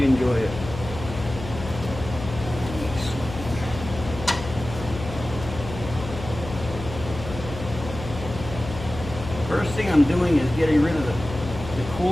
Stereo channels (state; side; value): noise; left; hum, 10 dB below the sound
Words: enjoy it. First thing I'm doing is getting rid of the